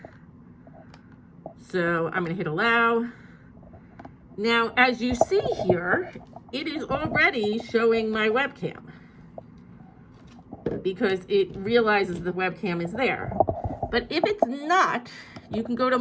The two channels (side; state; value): both; identical; correlation 1.00